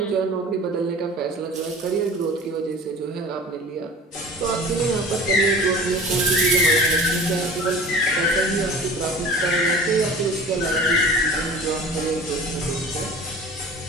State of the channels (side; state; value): both; normal; correlation 0.41